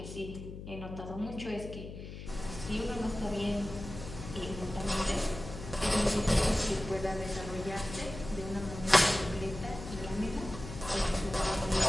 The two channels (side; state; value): left; noise; hum, 10 dB below the sound